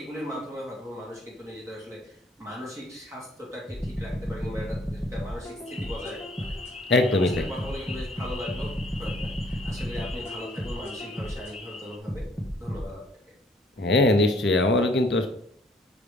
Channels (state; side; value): normal; both; correlation 0.61